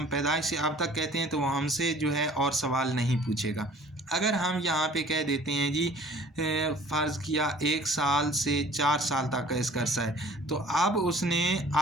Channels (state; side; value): normal; both; correlation 0.50